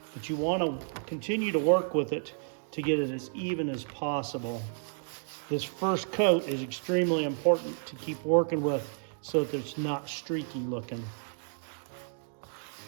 but you want to continue to work with it to get it as even as possible. This first coat is extremely important to keep working with so that it's not streaky looking.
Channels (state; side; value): silent; left; digital silence